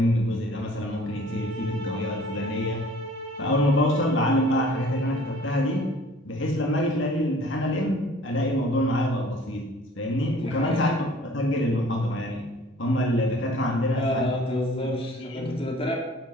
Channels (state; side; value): normal; both; correlation 0.51